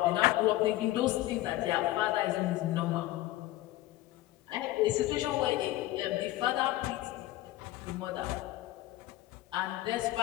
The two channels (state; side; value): quieter; right; 16.3 dB